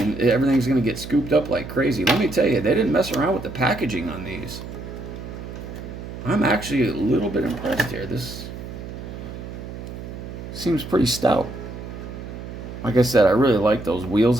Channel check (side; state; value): right; noise; hum, 10 dB below the sound